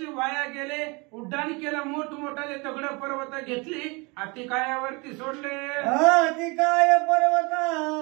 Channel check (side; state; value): left; quieter; 28.4 dB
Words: वाया गेले. उड्डाण केलं, मोठमोठाले दगड पर्वत घेतली, अतिकायावरती सोडले. अतिकाय पर्वता